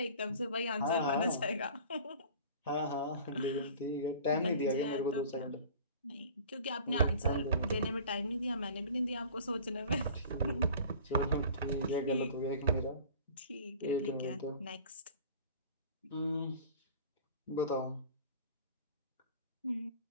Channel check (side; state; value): both; inverted; correlation -0.44